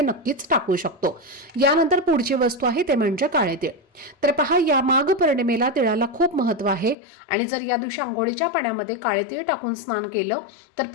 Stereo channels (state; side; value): drops out; right; at 7.0 s